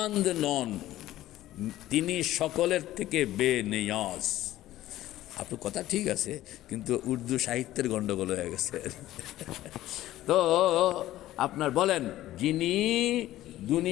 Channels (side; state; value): right; quieter; 14.7 dB